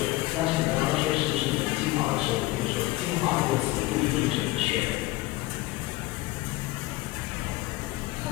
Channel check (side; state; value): right; quieter; 19.2 dB